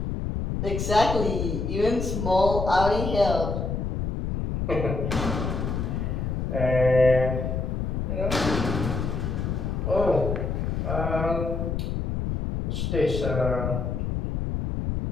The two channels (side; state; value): left; noise; rumble, 2 dB below the sound